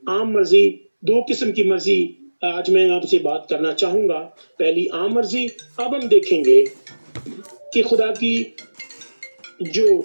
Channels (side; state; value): both; inverted; correlation -1.00